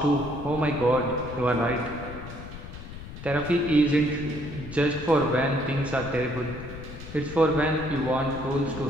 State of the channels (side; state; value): left; noise; rumble, 12 dB below the sound